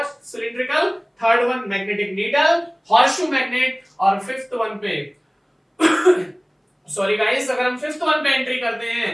cylindrical, third one magnetic needle, horseshoe magnet, और फिफ्थ वन पे सॉरी गाइस, अगर हम फिफ्थ वन पे एंट्री करते हैं,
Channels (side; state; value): both; identical; correlation 1.00